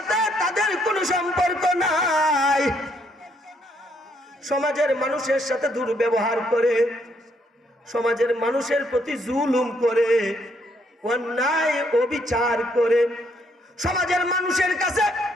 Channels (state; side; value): normal; both; correlation 0.71